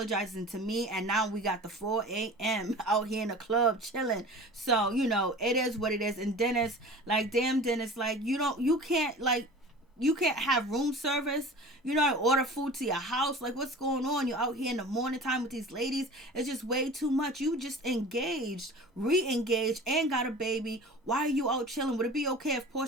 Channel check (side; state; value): both; normal; correlation 0.39